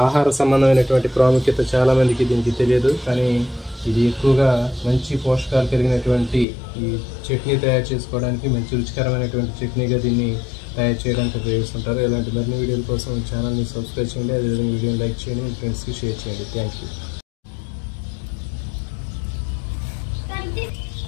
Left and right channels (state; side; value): drops out; right; at 6.5 s